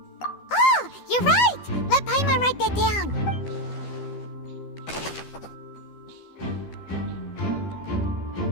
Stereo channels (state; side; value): late; right; 12 ms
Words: Oh, you're right! Let Paimon write that down.